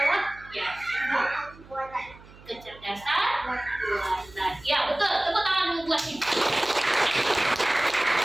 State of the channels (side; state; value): right; noise; hum, 22 dB below the sound